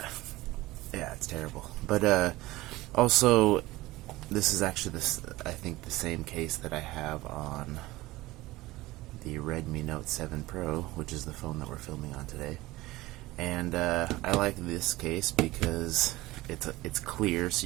it's terrible. But also this is actually I think the same case that I have on the Redmi Note 7 Pro, which is the phone that we're filming on today. And I like this case because it's clear, so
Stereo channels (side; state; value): left; quieter; 18.9 dB